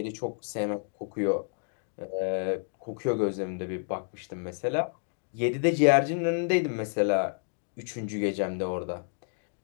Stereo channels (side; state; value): right; silent; digital silence